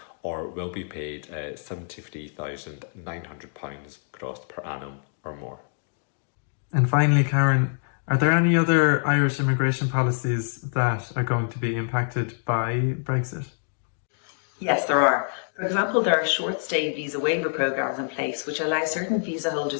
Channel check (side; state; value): right; silent; digital silence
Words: or will be paid £73,900 gross per annum or more. And finally, Karen, are there any other Irish immigration policies that are going to be impacted by Brexit? Yes, there are. For example, there are short-stay visa waiver programs in place which allow certain visa